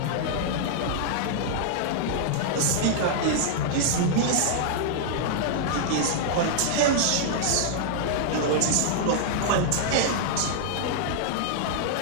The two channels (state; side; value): different; both; correlation -0.01